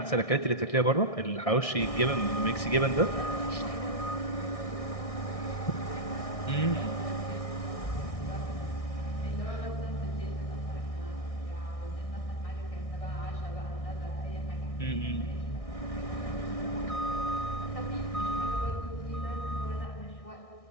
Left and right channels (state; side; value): late; right; 1.6 ms